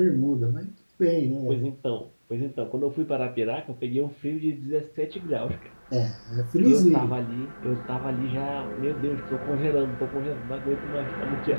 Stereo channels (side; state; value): both; inverted; correlation -1.00